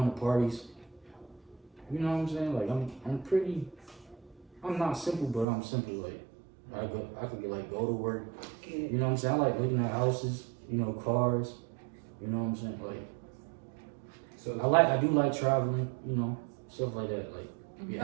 to parties. You know what I'm saying? Like I'm not simple, but I'm simple. Like I could like go to work. You know what I'm saying? I like looking at houses, you know, cars. You know what I'm saying? Like So I do like traveling, you know, stuff like that. Like be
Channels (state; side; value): drops out; left; at 5.5 s